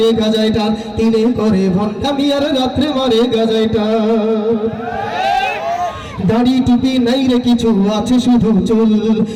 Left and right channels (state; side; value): identical; both; correlation 1.00